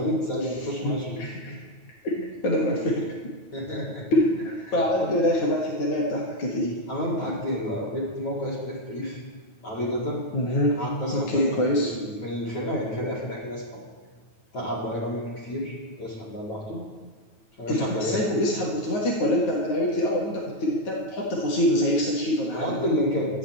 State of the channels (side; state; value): right; late; 9.3 ms